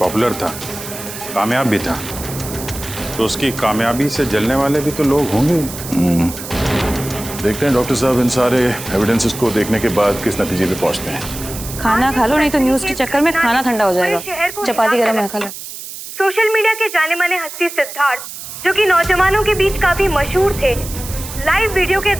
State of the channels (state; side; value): noise; right; hiss, 11 dB below the sound